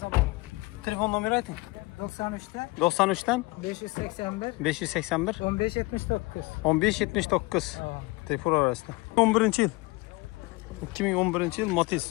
Telefon nomeri ayting. 93'ten 93'ten 581 581 1579 1579. Telefon arasında. 11 yıl. 2011 yıl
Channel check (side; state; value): right; quieter; 24.0 dB